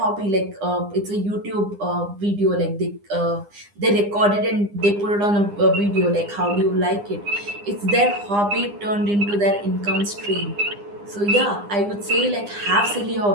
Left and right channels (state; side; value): late; left; 9.8 ms